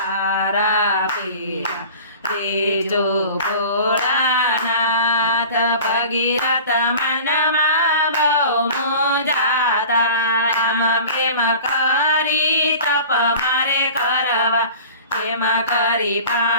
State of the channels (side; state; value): both; inverted; correlation -0.40